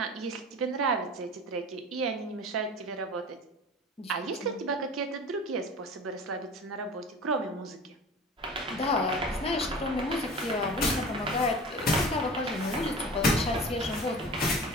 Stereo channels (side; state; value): both; normal; correlation 0.38